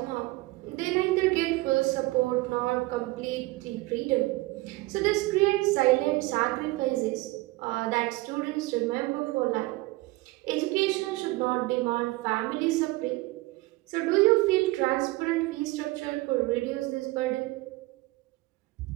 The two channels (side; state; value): left; quieter; 21.0 dB